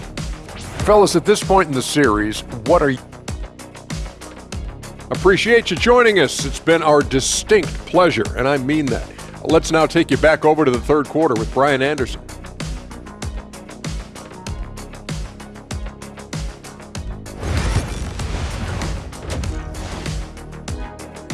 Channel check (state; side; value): identical; both; correlation 1.00